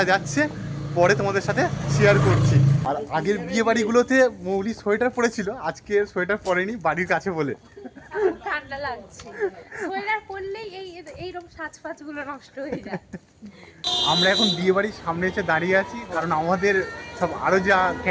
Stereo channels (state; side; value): identical; both; correlation 1.00